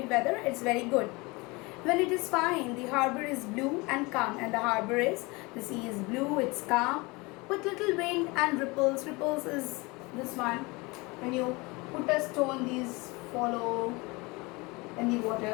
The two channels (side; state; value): right; quieter; 25.2 dB